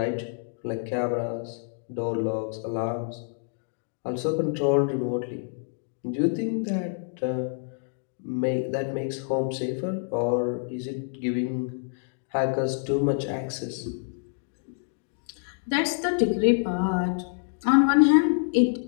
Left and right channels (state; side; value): silent; right; 60 dB below the other